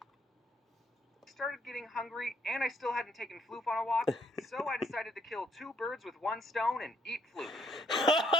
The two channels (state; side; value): normal; both; correlation 0.69